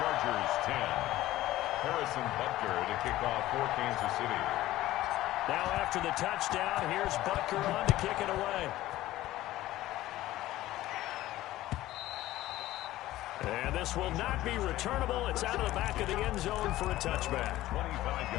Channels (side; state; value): right; quieter; 15.7 dB